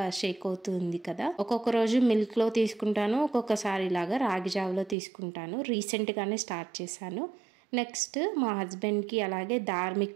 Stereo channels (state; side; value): drops out; left; at 5.0 s